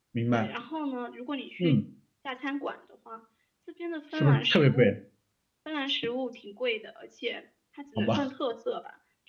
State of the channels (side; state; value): both; identical; correlation 1.00